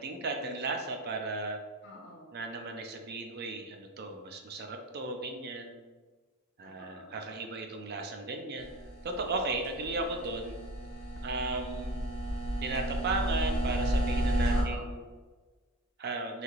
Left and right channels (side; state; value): both; normal; correlation 0.36